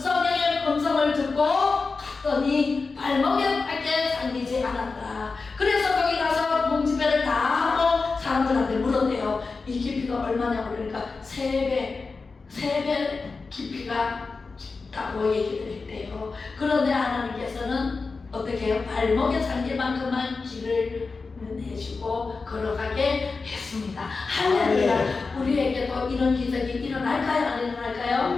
음성을 듣고 갔더니 발목에 밖에 잠기지 않았다. 그래서 거기 가서 부흥집회를 다 하고 사람들한테 물었대요. 이 깊이가 얼마냐고. 그러니까 3배 깊이가 깊다고 얘기를 했대요. 그런데 하나님께서는 어떻게 해요? 발목에 잠길 만큼만 길을 내주고 걸어가게 했습니다. 할렐루야. 우리에게도 이런 기적이 일어날까요? 안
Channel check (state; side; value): quieter; right; 4.3 dB